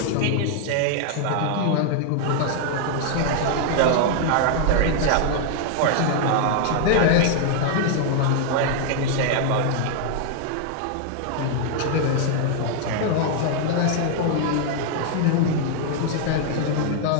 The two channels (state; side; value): different; both; correlation 0.00